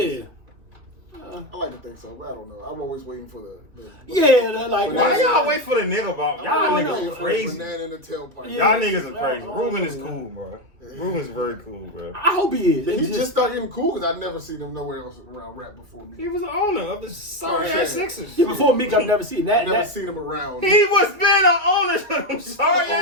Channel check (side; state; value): left; late; 2.6 ms